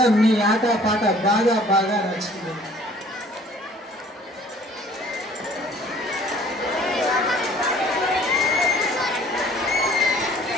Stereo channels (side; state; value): both; normal; correlation 0.54